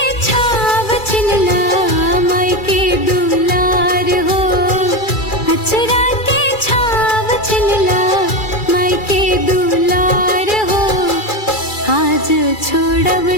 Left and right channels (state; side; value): late; right; 2.3 ms